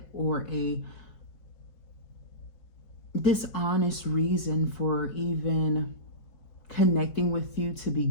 or a dishonest reason for even connecting with you to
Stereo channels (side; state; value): right; late; 4.7 ms